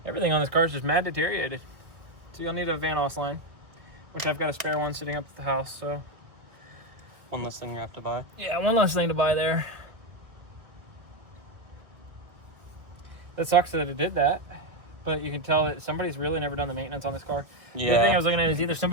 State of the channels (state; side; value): late; left; 1.5 ms